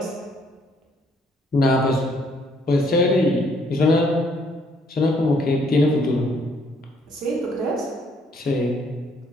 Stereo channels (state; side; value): normal; both; correlation 0.66